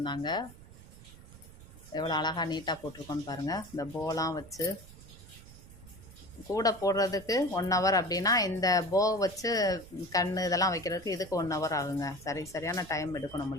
எவ்வளோ அழகாக நீட்டாக போட்டிருக்கோன்னு பாருங்கள். இந்த போலாம் வச்சு கூடை போடுறதுக்கு 1 ஹவர் அப்படின்னா, இந்த போ வச்சு கண் இதெல்லாம் வைக்கிறதுக்கு இதுக்கு 1 ஹவர் ஆகுங்க. சரியான டைம் எடுக்கும்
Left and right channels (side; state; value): right; noise; rumble, 19 dB below the sound